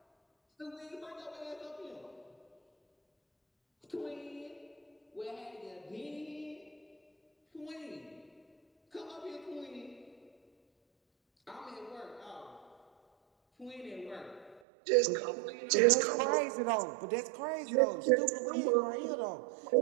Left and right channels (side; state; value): left; drops out; at 14.6 s